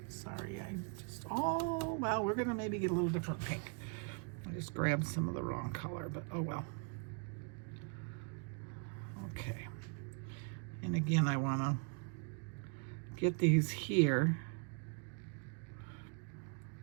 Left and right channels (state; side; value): quieter; left; 39.2 dB